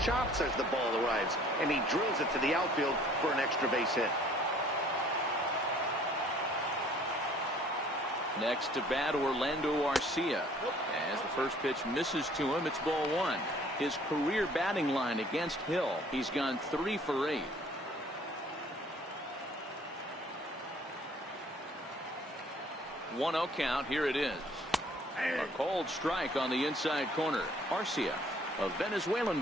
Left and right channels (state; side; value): normal; both; correlation 0.56